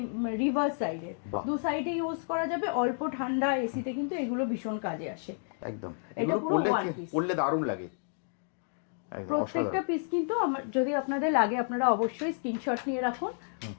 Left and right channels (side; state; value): right; silent; digital silence